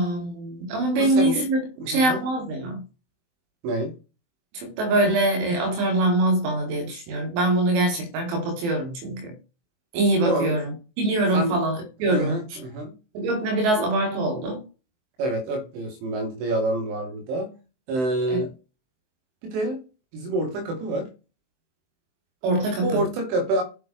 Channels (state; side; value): late; left; 23 ms